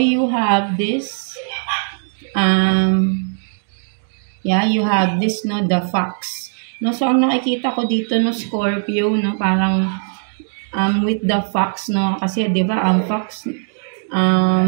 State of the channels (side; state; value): left; silent; digital silence